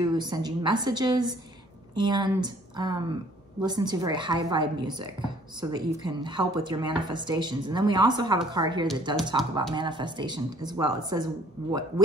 send you messages, and listen to very high vibe music so that you can help with your manifestations. And then we also have a card here that does talk about manifestation as well. It says,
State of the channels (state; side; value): normal; both; correlation 0.58